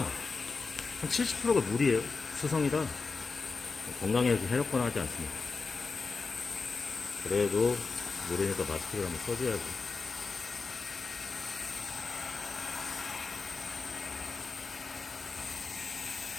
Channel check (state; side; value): quieter; right; 4.4 dB